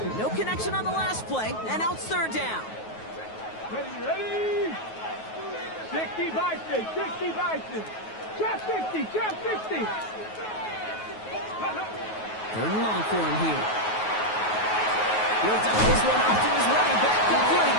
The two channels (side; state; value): right; late; 9.3 ms